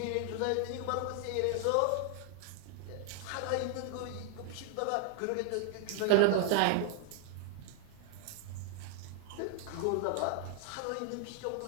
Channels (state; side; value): different; both; correlation 0.00